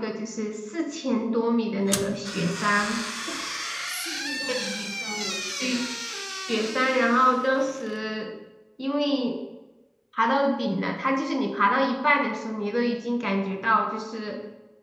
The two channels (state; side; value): identical; both; correlation 1.00